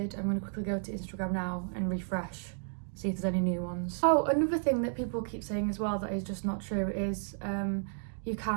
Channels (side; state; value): left; silent; 56 dB below the other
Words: I'm going to quickly go to Instagram now and refresh, see if there's any new ones. Oh, another thing that people keep saying as well that is just not true is you